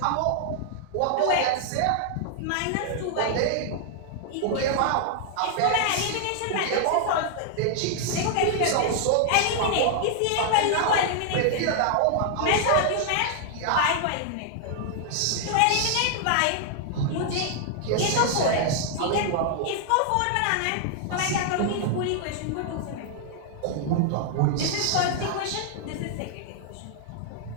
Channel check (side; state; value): both; different; correlation 0.00